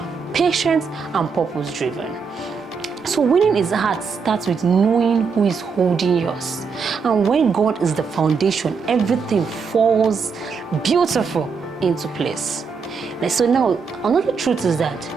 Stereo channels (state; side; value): quieter; left; 5.5 dB